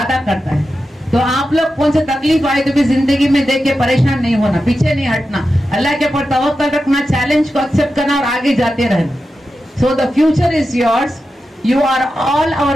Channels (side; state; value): both; normal; correlation 0.91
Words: करता है. तो आप लोग कौन सी तकलीफ आए तो भी जिंदगी में देख के परेशान नहीं होना, पीछे नहीं हटना, अल्लाह के ऊपर तवक्कल रखना, चैलेंज को एक्सेप्ट करना और आगे जाते रहना. So the future is yours. You are all